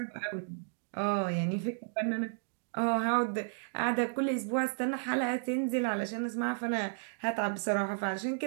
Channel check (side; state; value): left; silent; digital silence